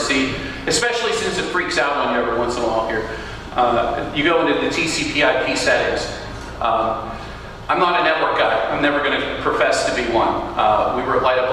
especially since it freaks out on you every once in a while here. You go into the TCP/IP settings. I'm not a network guy. I'm never going to profess to be one. We were at Light Up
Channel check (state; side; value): identical; both; correlation 1.00